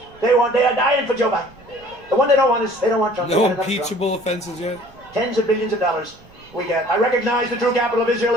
They are dying for Joe Biden. The one they don't want is, they don't want Trump. No impeachable offenses yet? Tens of billions of dollars we get. I recognize the true capital of Israel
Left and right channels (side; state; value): right; noise; rumble, 26 dB below the sound